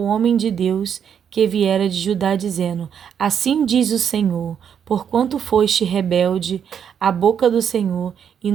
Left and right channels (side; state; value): left; quieter; 8.1 dB